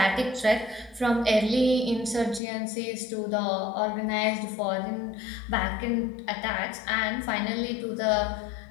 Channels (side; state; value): right; drops out; at 2.4 s